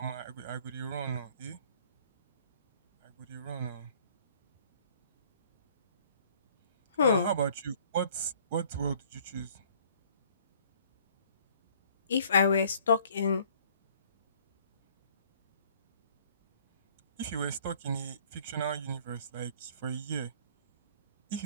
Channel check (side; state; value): both; inverted; correlation -0.57